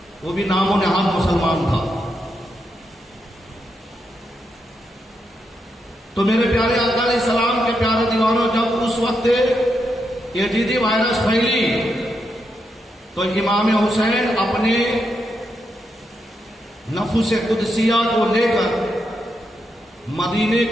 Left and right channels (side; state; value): both; normal; correlation 0.83